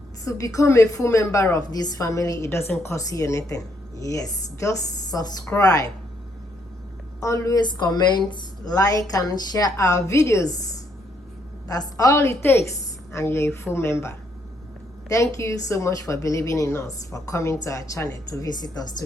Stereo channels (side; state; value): both; normal; correlation 0.73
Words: To become a full member of this family, it doesn't cost you anything. Yes, just subscribe. Always comment, like, and share our videos. That's all it takes, and you're a full member. Thank you so much for believing in us, for coming to our channel to visit us, to